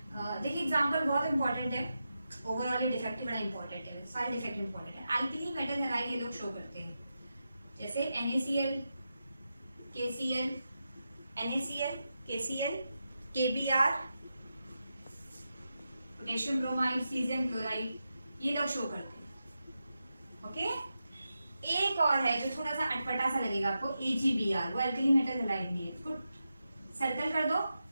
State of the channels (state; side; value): inverted; both; correlation -0.89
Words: देखिए एग्जाम्पल बहुत इंपॉर्टेंट है, ओवरऑल ये डिफेक्ट बड़ा इंपॉर्टेंट है, सारे डिफेक्ट इंपॉर्टेंट है। एल्कली मेटल हैलाइड ये लोग शो करते हैं जैसे NaCl, KCl, NaCl, KCl, KBr, potassium bromide, caesium chloride, ये लोग शो करते हैं, ओके। एक और है जो थोड़ा सा अटपटा सा लगेगा आपको, AgBr, वो एल्कली मेटल हैलाइड नहीं है, इसको सर्कल कर दो।